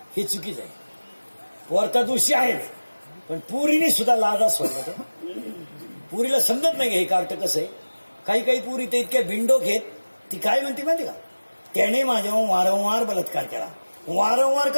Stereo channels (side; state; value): both; inverted; correlation -1.00